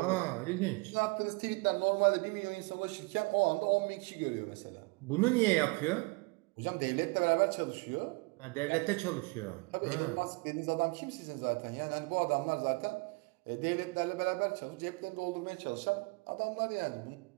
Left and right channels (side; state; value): left; quieter; 28.0 dB